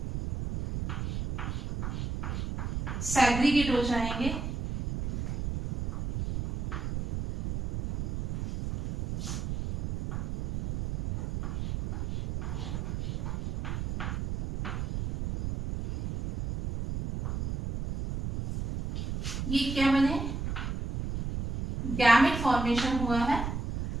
सेग्रीगेट हो जाएंगे। ये क्या बने, गैमेट फॉर्मेशन हुआ है।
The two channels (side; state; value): right; noise; rumble, 4 dB below the sound